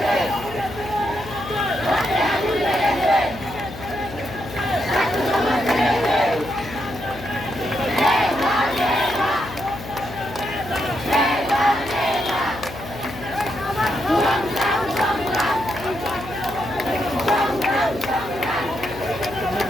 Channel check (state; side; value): noise; left; hum, 13 dB below the sound